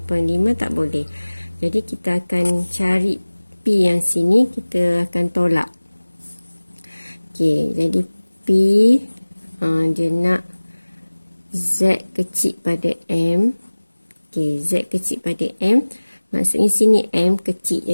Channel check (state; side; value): inverted; both; correlation -1.00